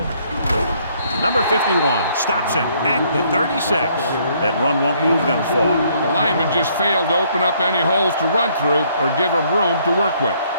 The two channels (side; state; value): both; inverted; correlation -0.66